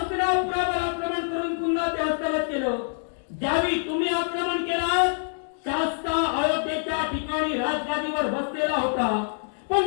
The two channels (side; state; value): right; silent; digital silence